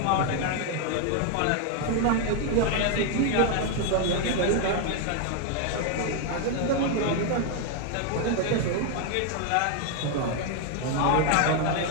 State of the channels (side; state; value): both; different; correlation 0.01